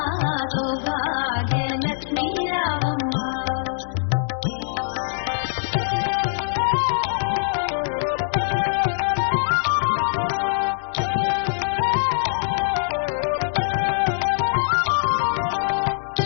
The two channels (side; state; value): right; silent; digital silence